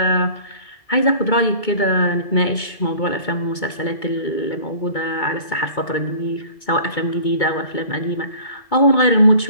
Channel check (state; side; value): late; right; 2.2 ms